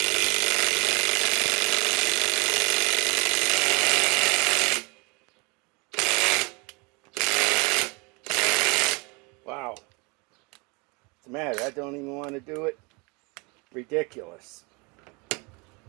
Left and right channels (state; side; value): quieter; left; 29.3 dB